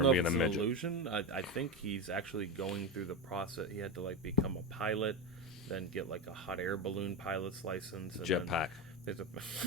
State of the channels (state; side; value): normal; both; correlation 0.16